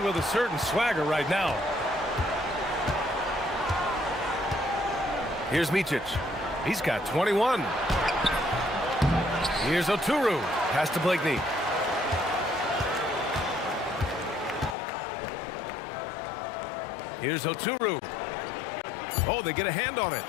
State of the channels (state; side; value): drops out; right; at 14.8 s